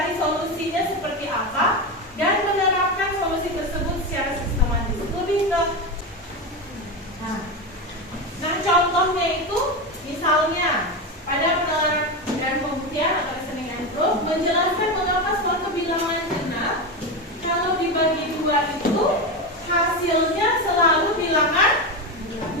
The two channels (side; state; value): both; normal; correlation 0.16